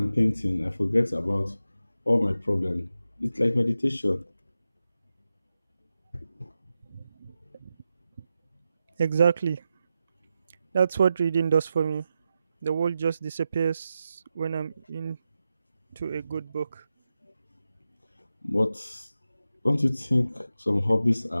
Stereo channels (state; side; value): inverted; both; correlation -0.91